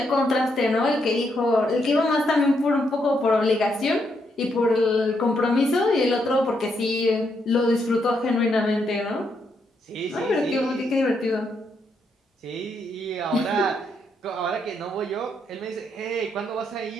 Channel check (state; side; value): normal; both; correlation 0.78